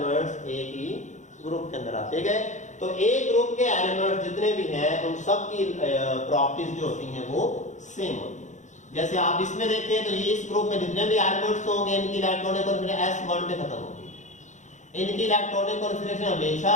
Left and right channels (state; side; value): late; right; 0.35 ms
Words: एक ही ग्रुप के अंदर आते गए। तो एक ग्रुप के एलिमेंट्स जितने भी हैं उन सब की प्रॉपर्टीज जो होती हैं वो सेम होती हैं। जैसे आप इसमें देखें तो ये इस ग्रुप में जितने भी एलिमेंट्स होंगे इनकी इलेक्ट्रॉनिक कॉन्फिगरेशन S1 पे खत्म होगी, इनकी इलेक्ट्रॉनिक कॉन्फिगरेशन हमेशा